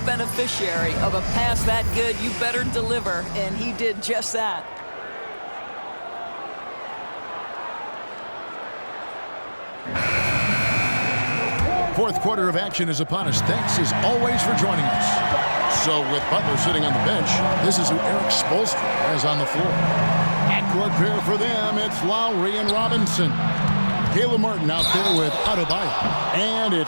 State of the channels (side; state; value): both; inverted; correlation -1.00